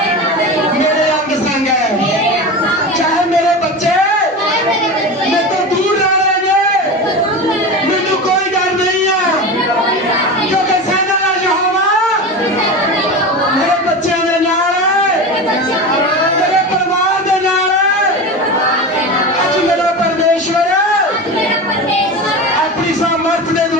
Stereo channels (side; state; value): both; normal; correlation 0.26